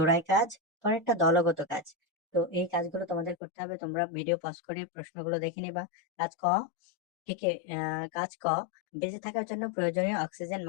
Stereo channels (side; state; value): right; drops out; at 3.4 s